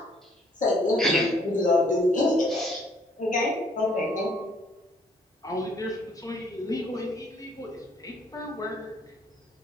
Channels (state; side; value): normal; both; correlation 0.63